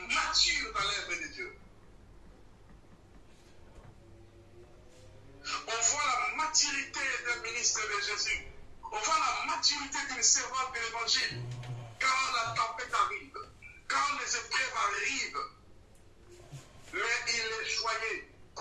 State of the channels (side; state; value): both; identical; correlation 1.00